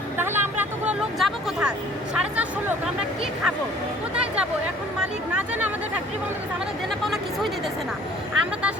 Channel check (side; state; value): both; normal; correlation 0.53